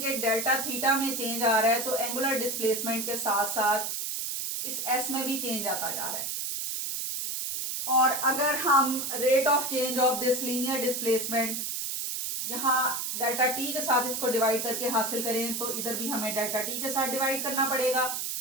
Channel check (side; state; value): right; noise; hiss, 3 dB below the sound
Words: कि डेल्टा थीटा में चेंज आ रहा है तो एंगुलर डिस्प्लेसमेंट के साथ साथ इस S में भी चेंज आता जा रहा है। और अगर हम rate of change of this linear displacement यहां डेल्टा टी के साथ इसको डिवाइड करके हासिल करें तो इधर भी हमें डेल्टा टी के साथ डिवाइड करना पड़ेगा।